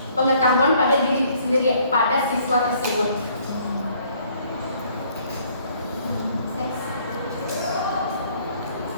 pengetahuan pada diri sendiri pada siswa tersebut.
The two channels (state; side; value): inverted; both; correlation -0.62